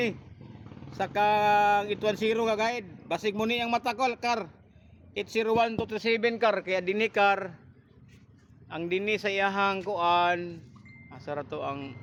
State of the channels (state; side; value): identical; both; correlation 1.00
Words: sa kang 810 nga guide basig mo ni ang matakol kar 801 237 kar kaya dinhi kar ang dinhi sa iyahang kuan asa ra to ang